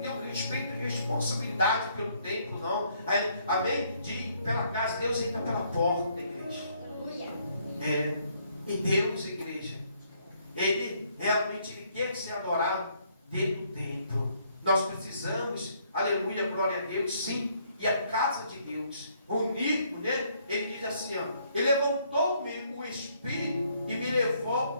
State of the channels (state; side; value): inverted; both; correlation -0.68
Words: o respeito e responsabilidade pelo templo, não. Amém? De ir pela casa, Deus entra pela porta, igreja. Aleluia. E Deus, igreja, Ele realmente quer ser adorado dentro do templo. Nós precisamos, aleluia, glória a Deus, sim. E a casa de Deus, unido, né? Ele diz assim, ele levantou-me o Espírito e me